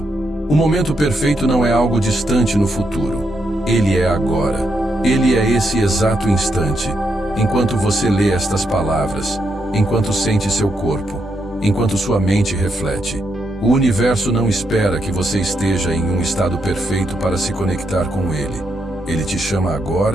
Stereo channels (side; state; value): both; normal; correlation 0.80